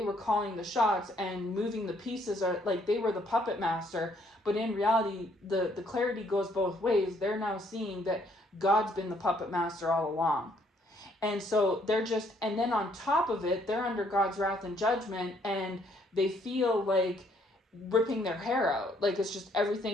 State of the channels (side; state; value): both; normal; correlation 0.67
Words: were calling the shots and moving the pieces, or like they were the puppet master, but in reality, the clarity goes both ways. They're now seeing that God's been the puppet master all along. And so and then on top of it, they're under God's wrath and judgment, and they feel like ripping their hair out. Like it's just,